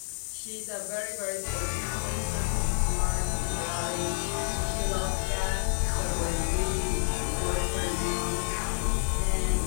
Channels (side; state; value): right; silent; digital silence